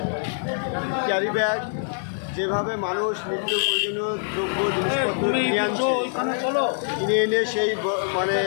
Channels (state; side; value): silent; right; digital silence